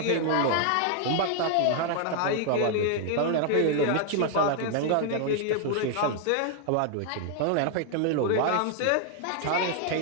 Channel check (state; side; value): different; both; correlation 0.00